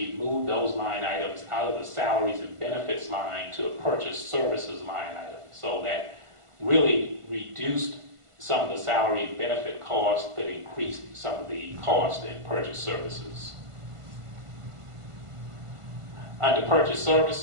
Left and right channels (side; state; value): left; late; 1.5 ms